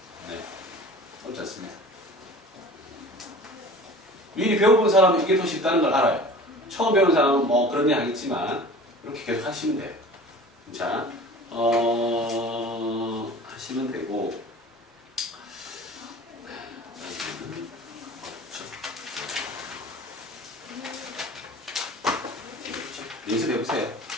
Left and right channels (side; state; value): both; normal; correlation 0.41